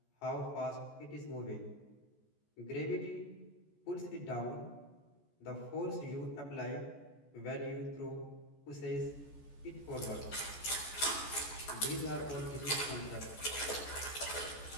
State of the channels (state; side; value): late; right; 14 ms